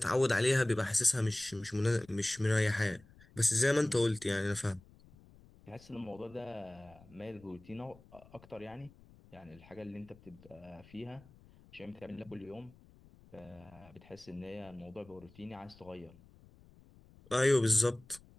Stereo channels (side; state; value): left; noise; rumble, 24 dB below the sound